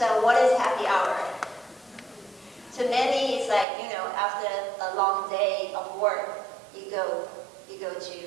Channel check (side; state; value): left; drops out; at 3.7 s